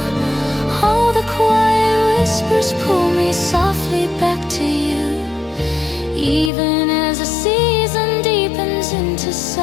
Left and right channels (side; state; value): right; drops out; at 6.5 s